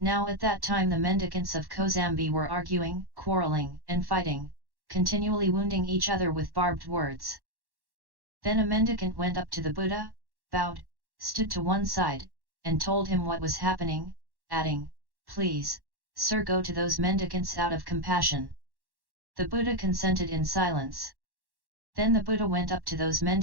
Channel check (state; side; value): late; left; 1.1 ms